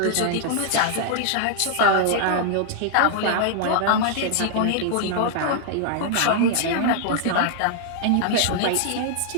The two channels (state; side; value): different; both; correlation 0.00